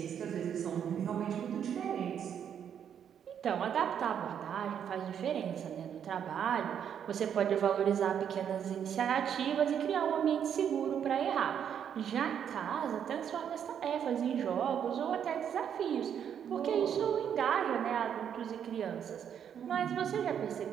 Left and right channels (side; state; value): left; quieter; 8.6 dB